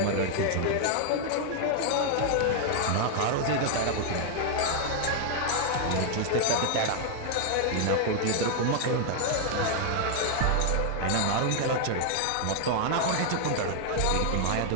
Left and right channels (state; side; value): different; both; correlation 0.00